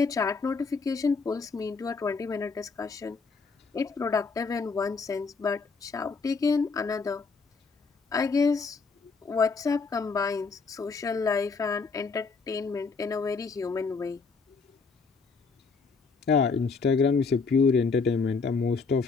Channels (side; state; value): right; quieter; 4.6 dB